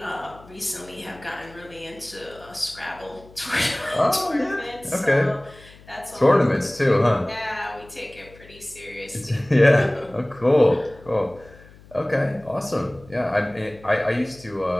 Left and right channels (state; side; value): noise; left; hum, 23 dB below the sound